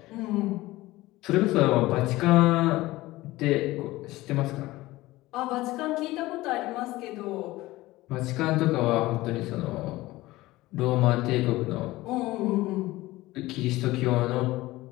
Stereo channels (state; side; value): quieter; right; 18.5 dB